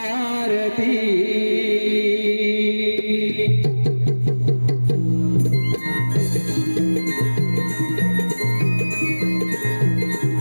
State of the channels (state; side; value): inverted; both; correlation -1.00